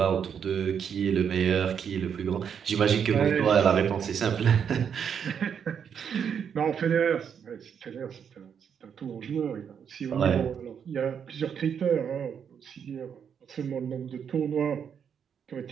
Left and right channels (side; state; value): left; quieter; 7.6 dB